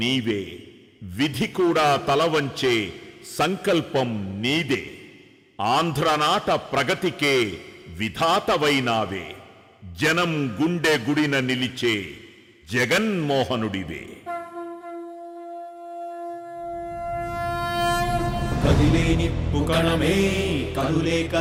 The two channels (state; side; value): identical; both; correlation 1.00